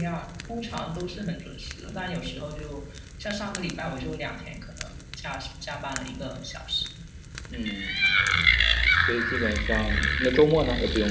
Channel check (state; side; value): identical; both; correlation 1.00